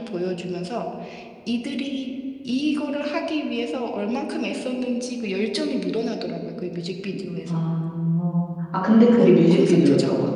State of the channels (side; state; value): both; identical; correlation 1.00